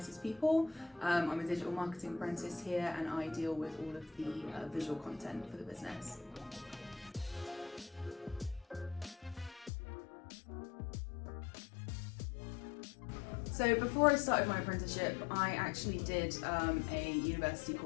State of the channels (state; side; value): drops out; right; at 9.7 s